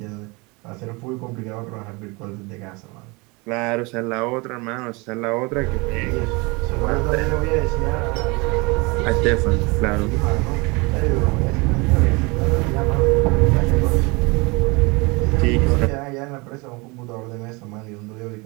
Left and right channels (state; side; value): quieter; left; 26.9 dB